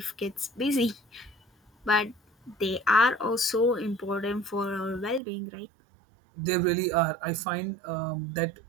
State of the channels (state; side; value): drops out; left; at 5.2 s